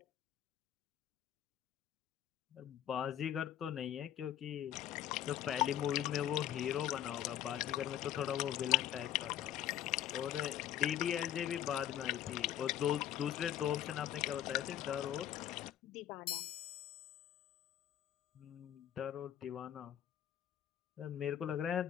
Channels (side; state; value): right; quieter; 11.1 dB